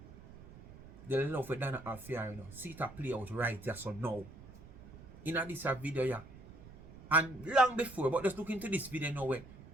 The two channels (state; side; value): noise; right; rumble, 18 dB below the sound